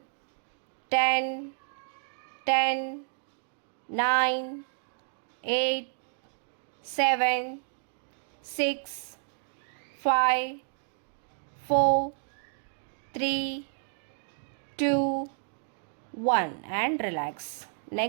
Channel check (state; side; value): silent; left; digital silence